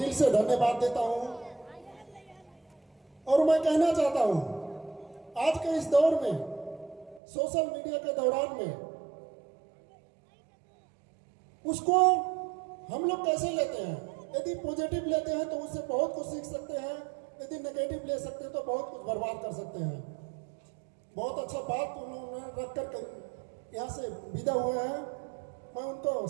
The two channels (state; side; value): drops out; left; at 7.2 s